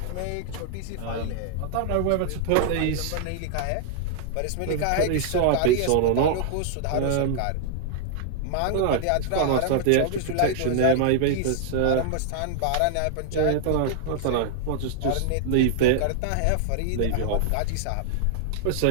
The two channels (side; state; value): both; different; correlation -0.01